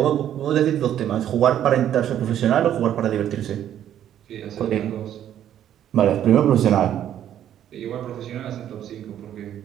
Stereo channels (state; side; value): quieter; left; 10.7 dB